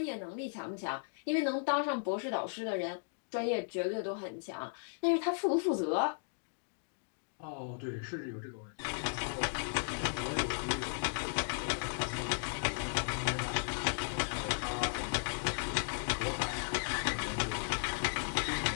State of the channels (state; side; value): silent; right; digital silence